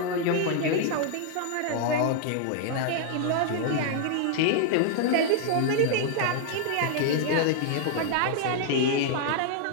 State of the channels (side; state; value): both; different; correlation 0.00